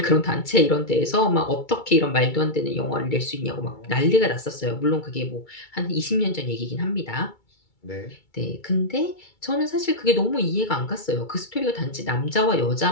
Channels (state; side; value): late; right; 2.3 ms